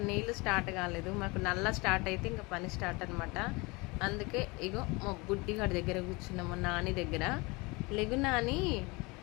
నీళ్ళు స్టార్ట్ కాలేదు, మాకు నల్ల స్టార్ట్ అయితే ఇంకా పని స్టార్ట్ అనమాట. అందుకే ఇగో మా బుడ్డిగాడి దగ్గర కూర్చున్నాం, మా నాని దగ్గర. లెగు నాని,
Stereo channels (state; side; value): quieter; right; 25.8 dB